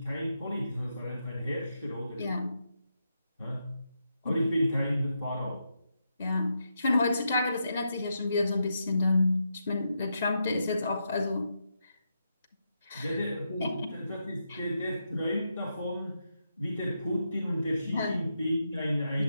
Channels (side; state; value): both; inverted; correlation -0.84